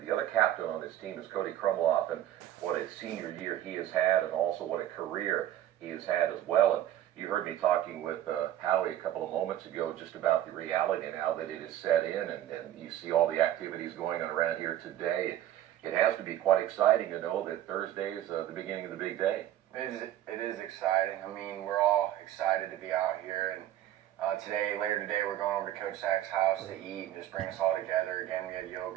the other captain on this team is Cody Krumloff, and what a senior year he has had, and also what a career he has had as well. And You heard me talking with Howie a couple of moments ago just about the reality now that it is set in, and you see all the activities going on around here today. It has to be quite exciting to know that Thursday is the beginning of the big day. It is exciting. I mean, we're all excited to be out here, and later today, we're going over to Coach Sack's house to eat and just bring us all together. Again, we had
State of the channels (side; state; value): left; quieter; 12.5 dB